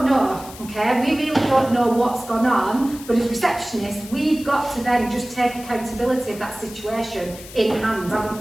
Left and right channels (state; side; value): noise; left; hiss, 16 dB below the sound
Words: know, okay? We really don't know what's gone on, but as receptionists, we've got to then just take accountability of that situation in hand, haven't